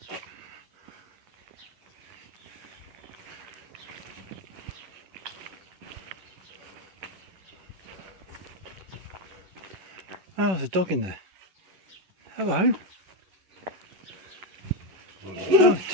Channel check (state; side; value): late; left; 11 ms